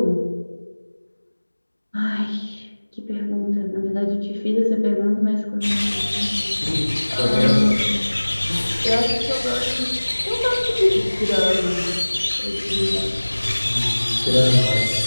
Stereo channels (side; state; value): both; inverted; correlation -1.00